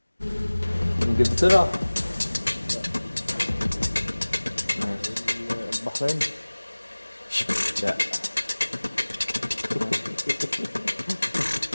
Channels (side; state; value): both; inverted; correlation -1.00